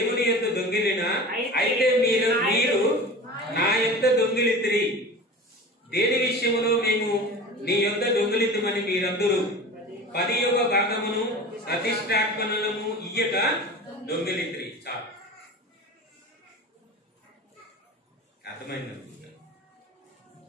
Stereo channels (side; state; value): both; normal; correlation 0.35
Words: యొద్ద దొంగిలిన అయితే మీరు నా యొద్ద దొంగిలితిరి. దేని విషయములో మేము నీ యొద్ద దొంగిలితమని మీరందరూ 10వ భాగమును ప్రతిష్టార్పణలను ఇయ్యక దొంగిలితిరి. చాలు, అర్థమైందనుకుంటా.